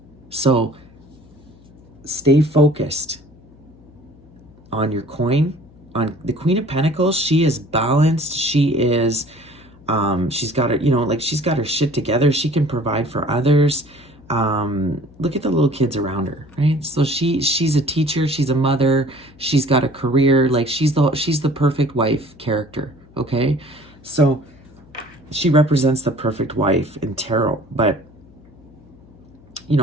So stay focused on your coin, on the Queen of Pentacles. She is balanced. She is, she's got her, you know, like, she's got her shit together. She can provide for others. Look at the little kids around her, right? So she's a teacher, she's a mother, she's got a career, like, she's the perfect wife character, okay? So she represents the perfect wife in tarot. But, you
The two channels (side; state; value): left; noise; hum, 25 dB below the sound